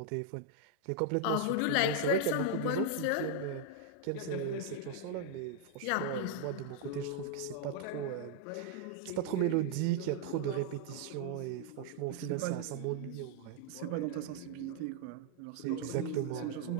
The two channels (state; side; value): different; both; correlation 0.00